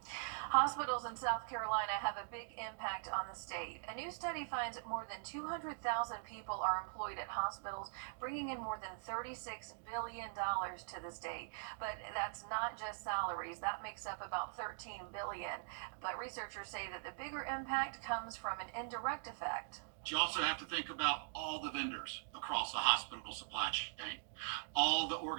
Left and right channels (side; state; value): left; silent; digital silence